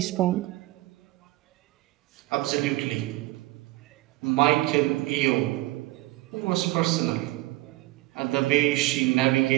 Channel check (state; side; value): quieter; left; 19.1 dB